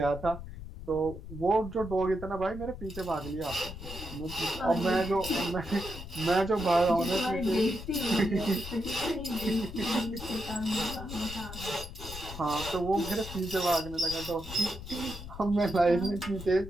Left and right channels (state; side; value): noise; left; rumble, 11 dB below the sound